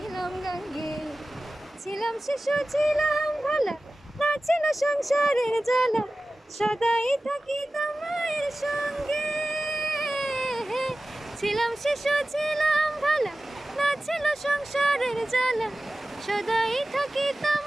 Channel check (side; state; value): both; normal; correlation 0.96